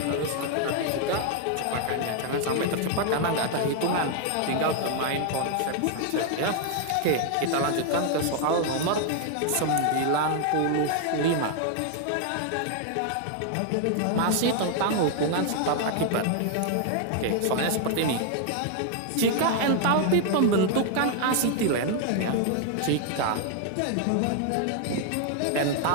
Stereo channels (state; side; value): different; both; correlation 0.00